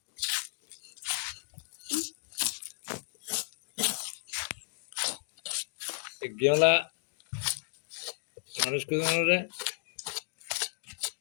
গেলা মানুষ কে জানো রে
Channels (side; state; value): right; silent; digital silence